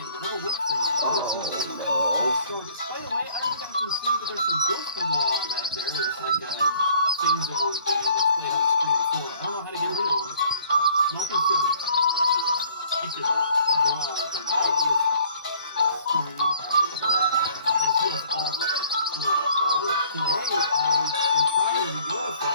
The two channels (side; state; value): both; inverted; correlation -0.56